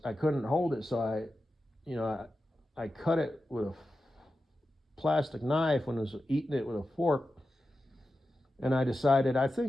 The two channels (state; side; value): normal; both; correlation 0.92